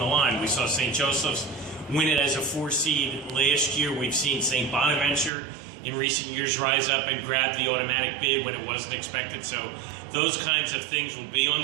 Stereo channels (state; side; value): drops out; left; at 5.3 s